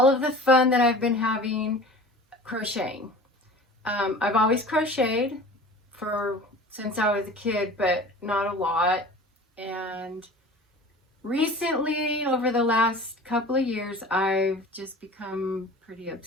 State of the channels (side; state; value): both; normal; correlation 0.40